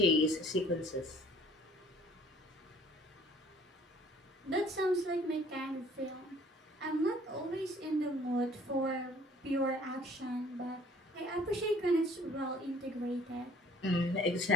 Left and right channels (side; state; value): both; normal; correlation 0.54